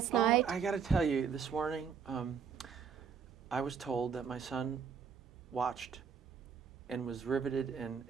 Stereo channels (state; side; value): quieter; left; 6.6 dB